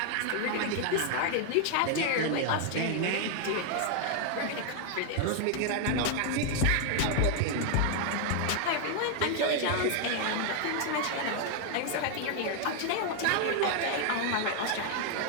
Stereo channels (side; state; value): both; different; correlation 0.00